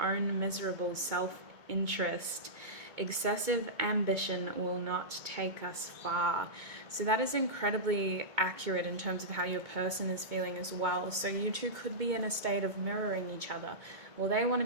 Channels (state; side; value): late; left; 2.2 ms